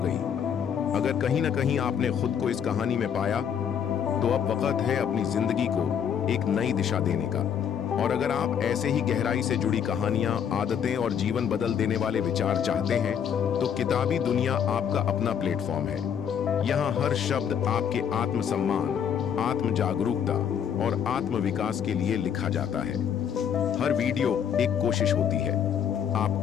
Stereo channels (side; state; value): right; quieter; 8.2 dB